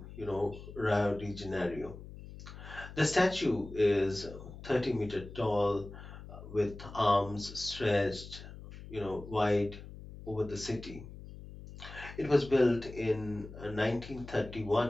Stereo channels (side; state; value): left; noise; hum, 14 dB below the sound